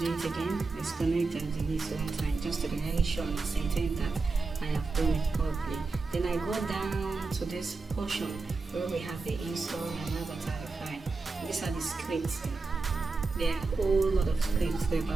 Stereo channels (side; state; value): left; quieter; 3.9 dB